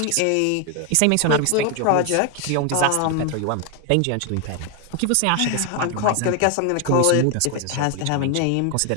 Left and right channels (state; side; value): different; both; correlation 0.01